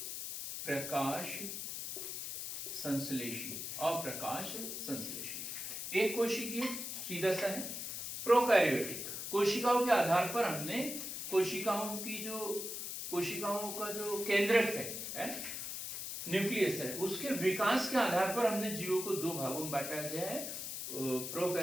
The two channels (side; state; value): left; noise; hiss, 5 dB below the sound